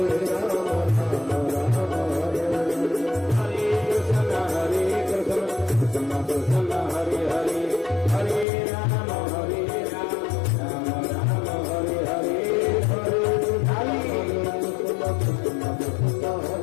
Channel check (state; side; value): drops out; right; at 8.5 s